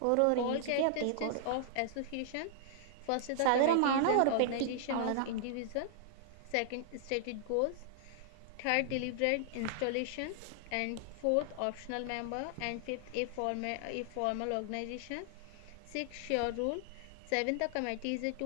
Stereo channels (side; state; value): both; different; correlation -0.01